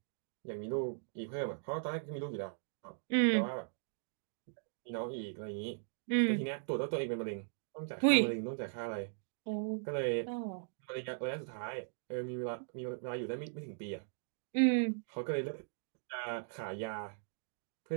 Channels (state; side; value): silent; left; digital silence